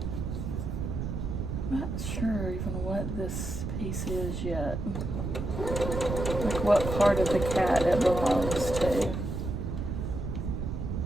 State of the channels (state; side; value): noise; right; rumble, 3 dB below the sound